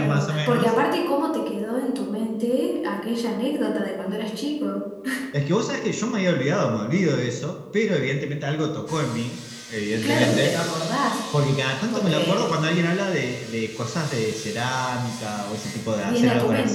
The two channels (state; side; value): identical; both; correlation 1.00